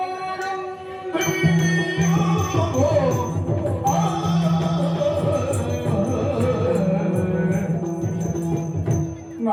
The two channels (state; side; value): identical; both; correlation 1.00